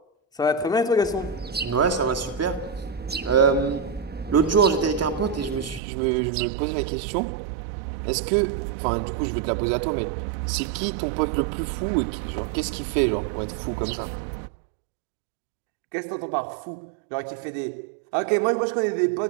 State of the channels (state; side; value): drops out; left; at 5.8 s